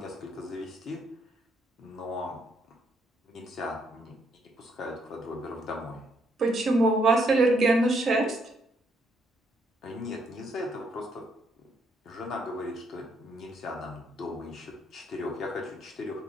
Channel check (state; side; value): normal; both; correlation 0.73